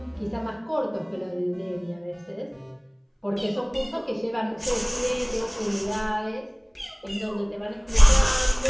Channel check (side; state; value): both; identical; correlation 1.00